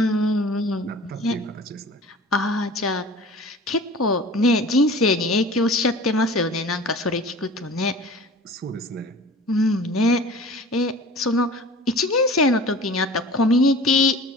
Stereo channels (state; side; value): normal; both; correlation 0.41